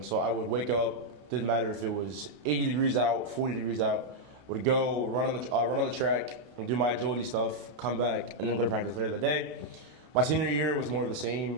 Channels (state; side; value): late; left; 32 ms